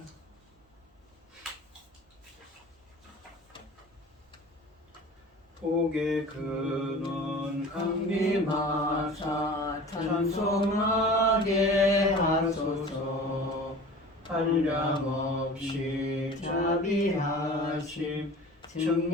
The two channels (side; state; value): both; normal; correlation 0.40